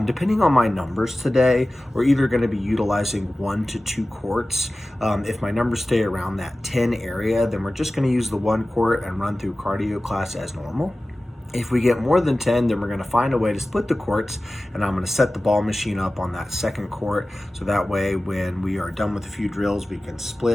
Depending on my numbers today, we're either gonna be utilizing 1 to 2 courts. If my numbers stay around that 10 area, then we're just gonna use the 1 court and run through cardio class as normal. If we get more than 10, then we're gonna find a way to split the courts, and I'm gonna set the ball machine up on that 2nd court, so that way when we are done with a few drills, we can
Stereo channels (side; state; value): both; normal; correlation 0.96